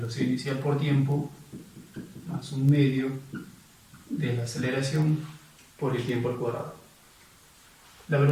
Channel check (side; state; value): both; identical; correlation 1.00